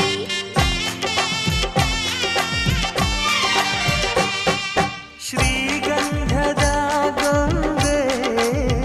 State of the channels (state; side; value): identical; both; correlation 1.00